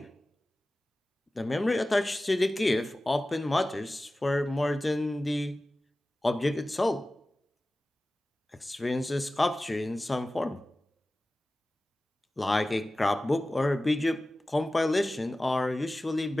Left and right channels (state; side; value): normal; both; correlation 0.96